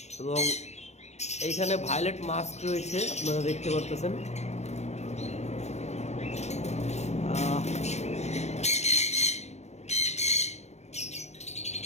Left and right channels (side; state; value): right; late; 0.32 ms